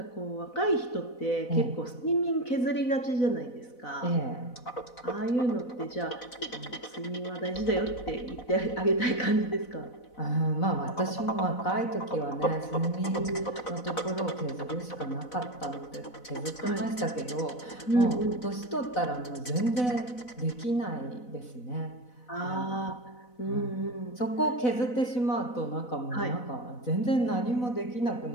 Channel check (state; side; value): late; right; 4.0 ms